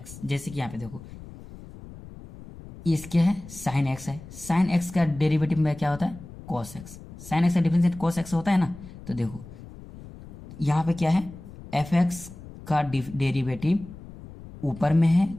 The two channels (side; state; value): left; noise; rumble, 16 dB below the sound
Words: जैसे कि यहाँ पे देखो इसके है साइन एक्स है, साइन एक्स का डेरिवेटिव में क्या होता है, कॉस एक्स, साइन एक्स का डिफरेंशिएट कॉस एक्स होता है ना। तो देखो यहाँ पे क्या है, एफ एक्स का डेरिवेटिव ऊपर में है,